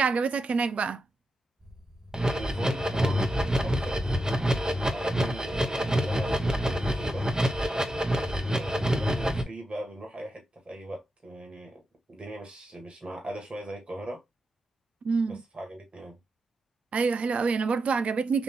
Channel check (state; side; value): normal; both; correlation 0.88